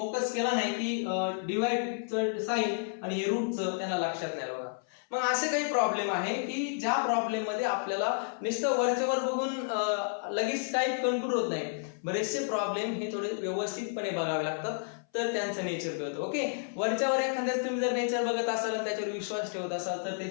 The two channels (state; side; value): silent; right; 57 dB below the other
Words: केला नाही की डिवाइडचं साइन आणि हे रूटचं त्यांना लक्षात नाही. बघा मग असे काही प्रॉब्लेम आहे की ज्या प्रॉब्लेम मध्ये आपल्याला नुसतं वरच्यावर बघून लगेच टाईप कंट्रोल होत नाही. बरेचसे प्रॉब्लेम हे थोडे व्यवस्थितपणे बघावे लागतात तर त्यांचं नेचर कळतं. ओके वरच्यावर एखाद्याच तुम्ही जर नेचर बघत असाल आणि त्याच्यावर विश्वास ठेवत असाल तर ते